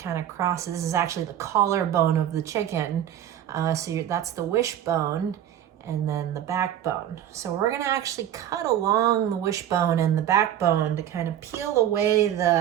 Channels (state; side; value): quieter; left; 10.9 dB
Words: of crosses? This is actually the collarbone of the chicken. That's the wishbone, and then the backbone. So we're gonna actually cut along the wishbone and the backbone to kind of peel away